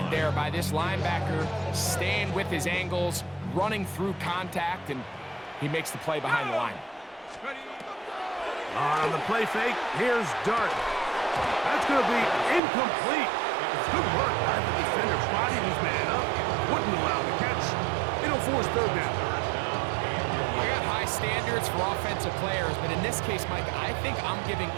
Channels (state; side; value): drops out; left; at 12.6 s